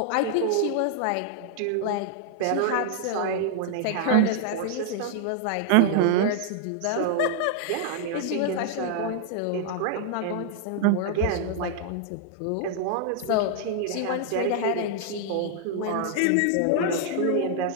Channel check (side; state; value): both; different; correlation -0.01